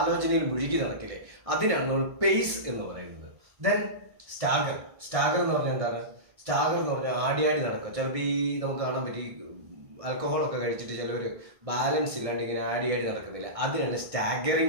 മുഴുകി നടക്കില്ലേ, അതിനാണ് നമ്മൾ പേയ്സ് എന്ന് പറയുന്നത്. Then stagger. സ്റ്റാഗർ എന്ന് പറഞ്ഞാൽ എന്താണ്? സ്റ്റാഗർ എന്ന് പറഞ്ഞാൽ ആടി നടക്കുക. ചിലപ്പോൾ ഈ നമുക്ക് കാണാൻ പറ്റി ആൽക്കഹോളൊക്കെ കഴിച്ചിട്ട് ചിലവർ ബാലൻസ് ഇല്ലാണ്ട് ഇങ്ങനെ ആടി നടക്കുന്നില്ല, അതിനാണ്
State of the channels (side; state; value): left; late; 1.6 ms